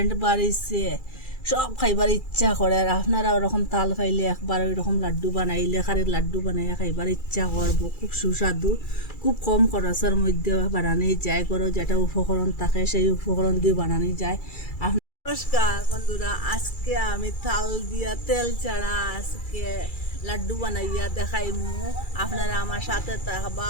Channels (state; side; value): late; right; 2.3 ms